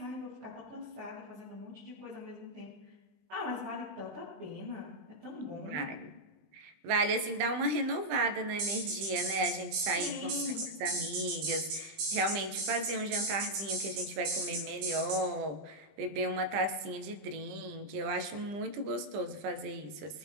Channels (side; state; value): left; late; 20 ms